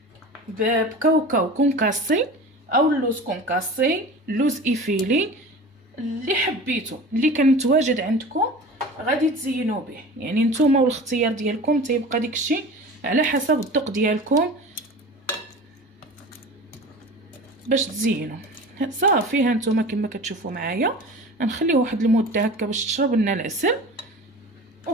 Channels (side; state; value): both; normal; correlation 0.36